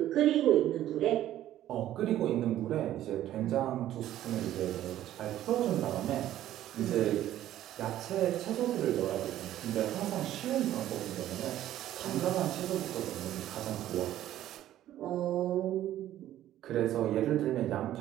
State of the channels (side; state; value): left; quieter; 12.9 dB